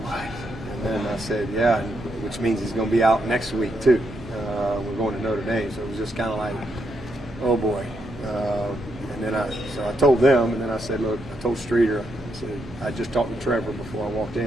what? And then I said, yeah, which means he's going to be out next week too. We're going to Notre Dame, so it was just kind of like, oh boy. And then so I told them, and then I said, look, I told Streeter, I said, I just talked to Trevor before I walked in.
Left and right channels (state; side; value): noise; left; hum, 18 dB below the sound